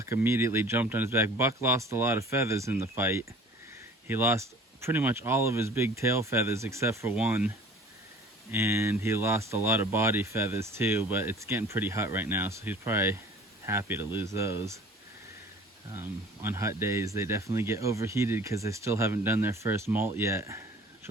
immediately jumped on his back. Buck lost a lot of feathers in the fight. He lost pretty much all of his big tail feathers except for one, and he lost a lot of body feathers too, but it's getting pretty hot right now, so he's probably happy to lose those. On hot days they definitely get overheated because they still haven't done their first molt yet, which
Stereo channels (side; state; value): both; normal; correlation 0.47